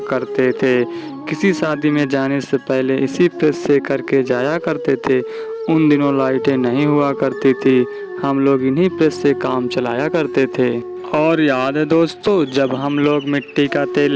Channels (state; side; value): identical; both; correlation 1.00